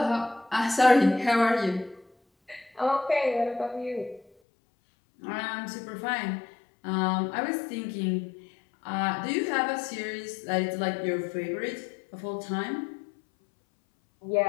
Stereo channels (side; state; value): right; drops out; at 4.2 s